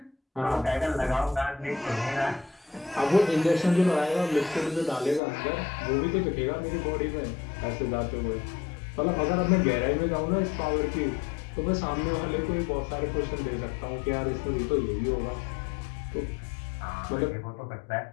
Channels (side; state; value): right; drops out; at 5.2 s